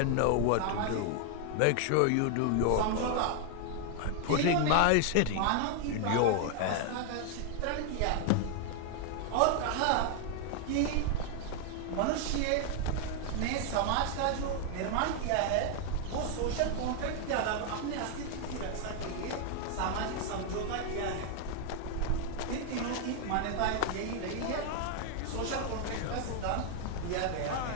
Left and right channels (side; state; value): both; different; correlation 0.00